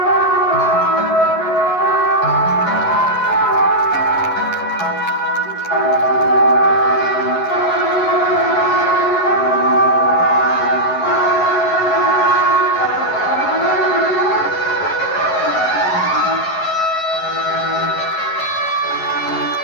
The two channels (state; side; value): late; right; 11 ms